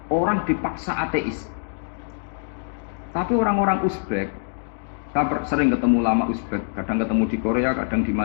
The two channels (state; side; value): silent; right; digital silence